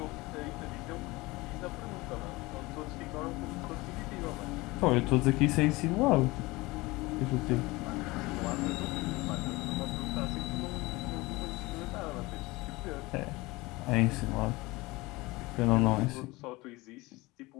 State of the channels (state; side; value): quieter; right; 21.9 dB